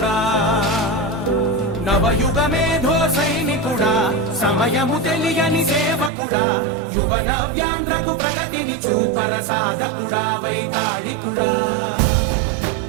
నవయుగ మేధో సైనికుడా సమయము తెలియని సేవకుడా యువ నవ్యాంధ్రకు ప్రగతిని చూపర సాధకుడా వైతాళికుడా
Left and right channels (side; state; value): left; drops out; at 6.1 s